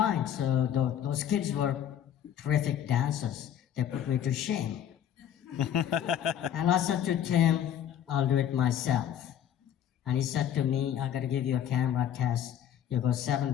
So those kids were terrific dancers. They put me to shame. And I said to Tim, I'll do it myself. And he said to me, I gotta give you a camera test. You go 7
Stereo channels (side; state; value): right; quieter; 10.0 dB